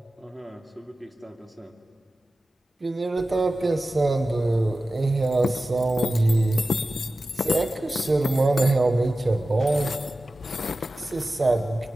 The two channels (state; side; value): normal; both; correlation 0.95